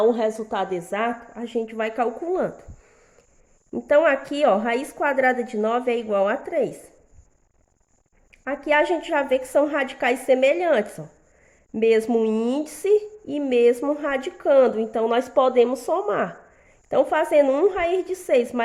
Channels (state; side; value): identical; both; correlation 1.00